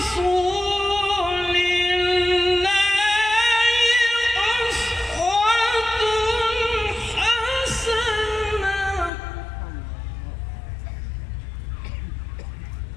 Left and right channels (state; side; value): drops out; right; at 9.1 s